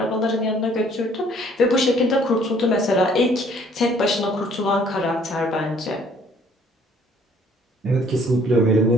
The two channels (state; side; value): normal; both; correlation 0.59